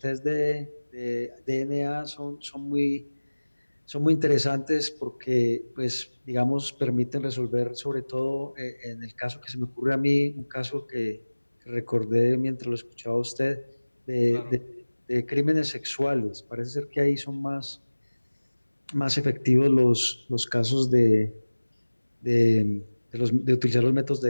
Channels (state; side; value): inverted; both; correlation -1.00